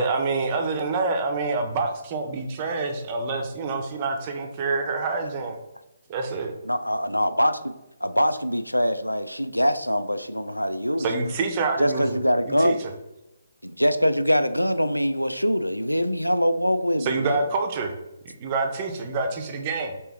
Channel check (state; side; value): inverted; both; correlation -0.83